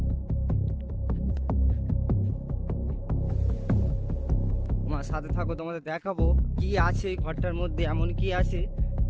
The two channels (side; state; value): both; identical; correlation 1.00